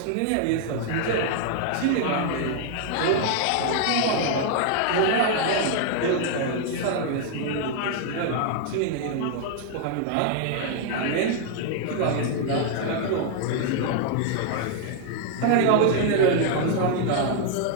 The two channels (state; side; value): different; both; correlation 0.00